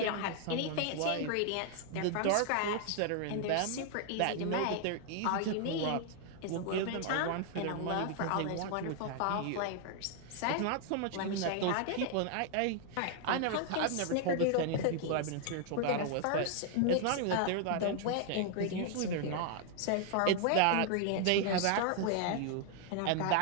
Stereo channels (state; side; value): different; both; correlation 0.00